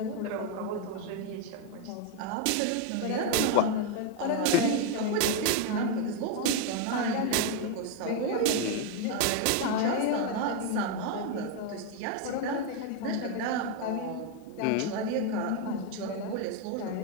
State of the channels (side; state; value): both; different; correlation 0.01